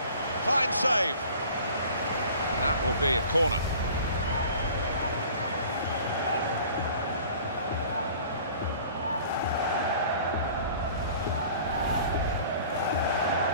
Fine save. That will be a corner.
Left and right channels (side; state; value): both; inverted; correlation -0.47